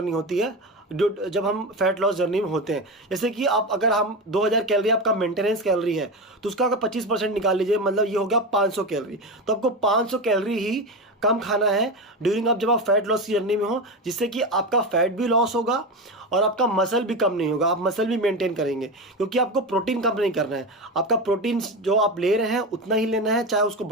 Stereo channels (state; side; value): normal; both; correlation 0.19